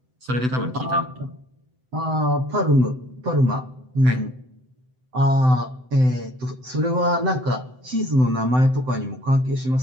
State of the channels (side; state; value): left; late; 7.8 ms